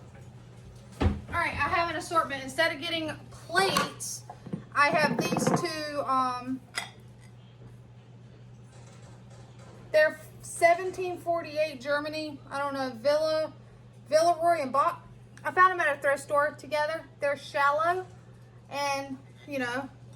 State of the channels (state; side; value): identical; both; correlation 1.00